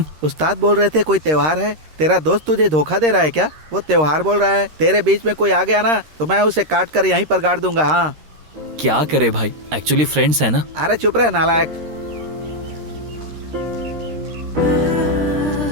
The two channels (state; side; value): late; left; 13 ms